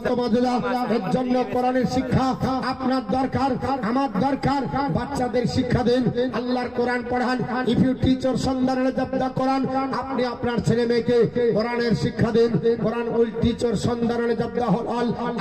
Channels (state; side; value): noise; right; hum, 27 dB below the sound